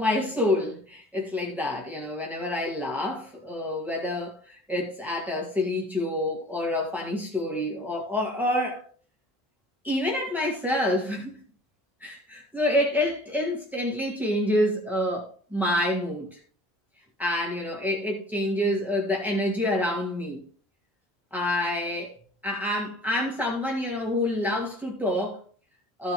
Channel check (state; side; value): normal; both; correlation 0.47